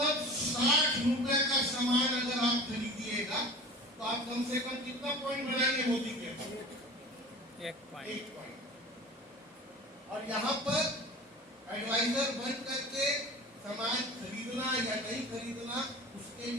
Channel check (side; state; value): both; normal; correlation 0.37